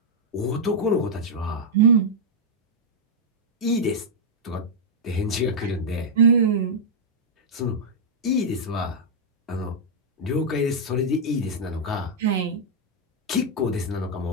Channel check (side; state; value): both; normal; correlation -0.04